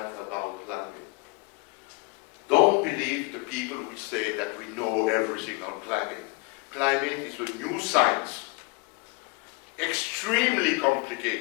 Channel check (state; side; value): quieter; right; 26.8 dB